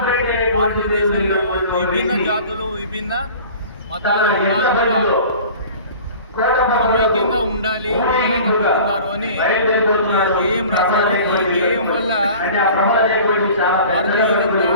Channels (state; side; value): inverted; both; correlation -0.43